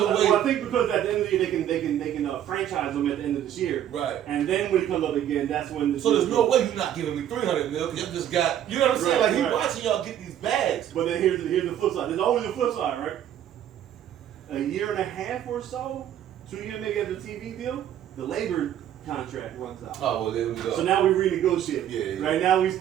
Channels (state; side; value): quieter; left; 10.8 dB